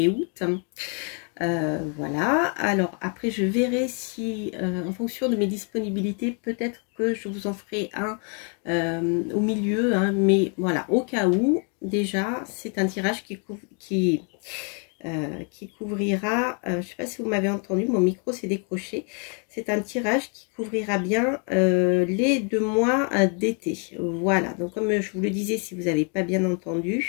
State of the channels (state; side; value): quieter; right; 39.1 dB